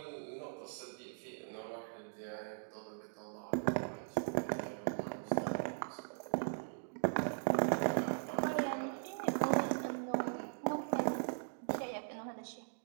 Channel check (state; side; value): silent; left; digital silence